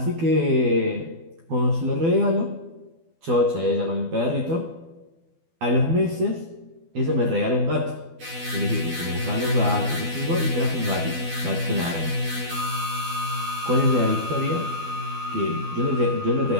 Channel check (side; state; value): left; late; 12 ms